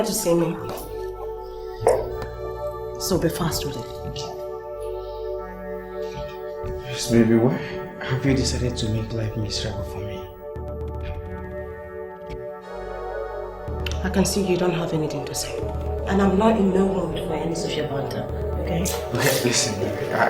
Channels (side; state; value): both; identical; correlation 1.00